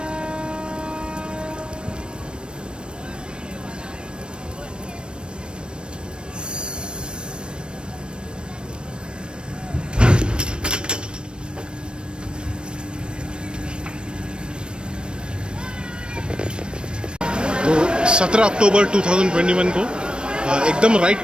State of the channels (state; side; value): late; left; 0.054 ms